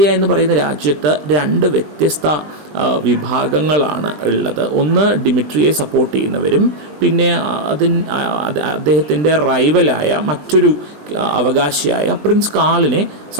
എന്ന് പറയുന്ന രാജ്യത്ത് രണ്ട് വ്യത്യസ്ത വിഭാഗങ്ങളാണ് ഉള്ളത്. ഒന്ന് ഡിമിട്രിയെ സപ്പോർട്ട് ചെയ്യുന്നവരും പിന്നെ അദ്ദേഹത്തിൻ്റെ റൈവലായ മറ്റൊരു അവകാശിയായ പ്രിൻസ് കാളിനെ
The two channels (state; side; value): late; left; 20 ms